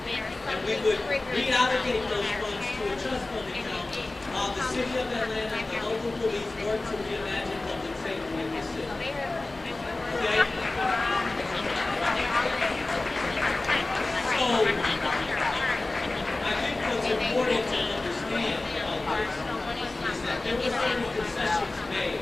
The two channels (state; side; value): quieter; right; 3.0 dB